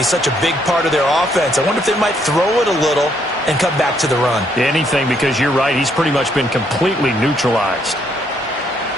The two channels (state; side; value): normal; both; correlation 0.71